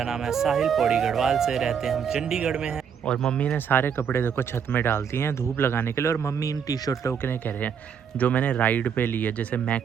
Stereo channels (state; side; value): quieter; left; 7.4 dB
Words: नाम है साहिल, पौड़ी गढ़वाल से रहते हैं हम, चंडीगढ़ में हैं। और मम्मी ने सारे कपड़े देखो छत में डाल दिए हैं धूप लगाने के लिए। और मम्मी इन टी शर्टों के लिए कह रहे हैं जो मैंने राइड पे ली है, जैसे